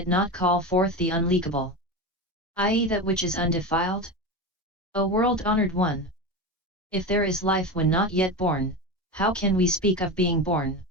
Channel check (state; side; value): normal; both; correlation 0.22